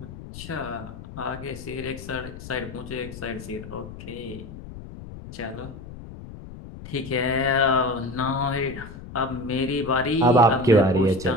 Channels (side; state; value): left; noise; rumble, 13 dB below the sound